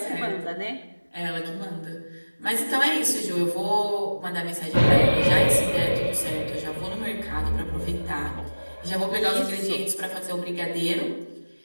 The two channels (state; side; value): inverted; both; correlation -1.00